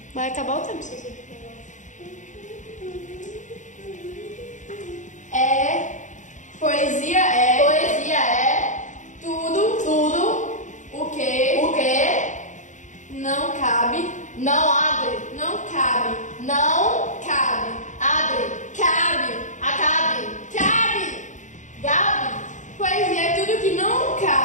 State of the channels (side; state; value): right; late; 0.36 ms